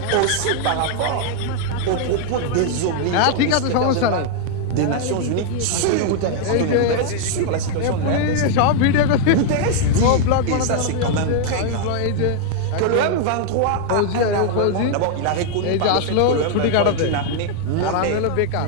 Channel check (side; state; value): both; different; correlation 0.00